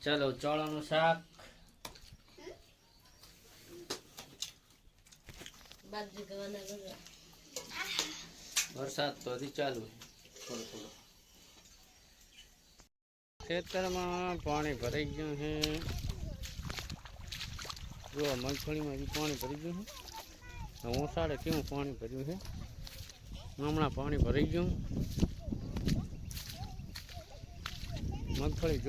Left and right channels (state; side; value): identical; both; correlation 1.00